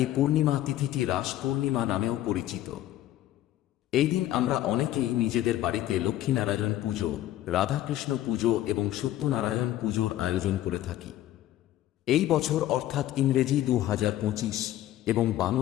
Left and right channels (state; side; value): quieter; right; 13.6 dB